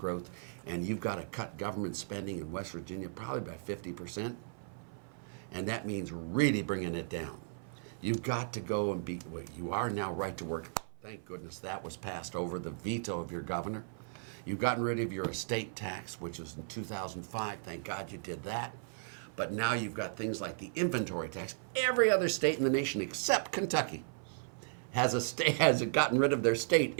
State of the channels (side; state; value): left; silent; 54 dB below the other